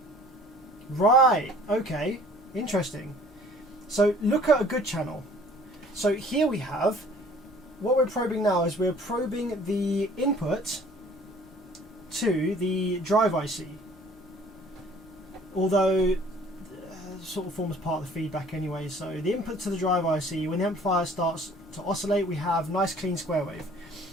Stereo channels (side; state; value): both; normal; correlation 0.52